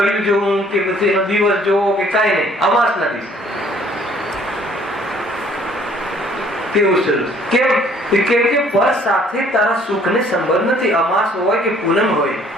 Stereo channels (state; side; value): normal; both; correlation 0.59